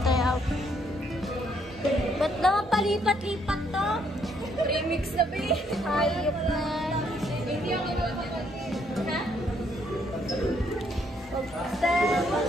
out. Ba't naman palipat-lipat to? Remix na ba eh? Hayop na. Hindi ako makapag... Ha?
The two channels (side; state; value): both; normal; correlation 0.70